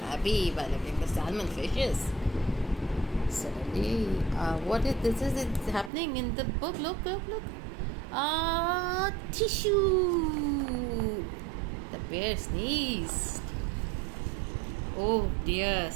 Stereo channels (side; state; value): left; drops out; at 5.9 s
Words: by looking at the salmon fishes. Suddenly, what is this? Is happening in the book? Look. Tissue! The bear sneezed. Oh dear,